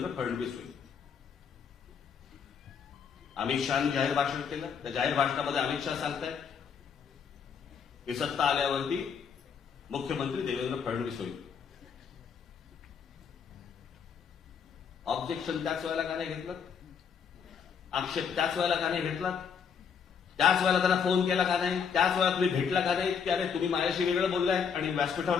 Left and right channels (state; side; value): quieter; right; 6.9 dB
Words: फडणवीस होईल. अमित शहानी जाहीर भाषण केलं. त्या जाहीर भाषणामध्ये अमित शहा सांगतायत की सत्ता आल्यावरती मुख्यमंत्री देवेंद्र फडणवीस होईल. ऑब्जेक्शन त्याच वेळेला का नाही घेतलं? आक्षेप त्याच वेळेला का नाही घेतला? त्याच वेळेला त्यांना फोन केला का नाही? त्याच वेळेला तुम्ही भेटला का नाही? की अरे तुम्ही माझ्याशी वेगळं बोललाय आणि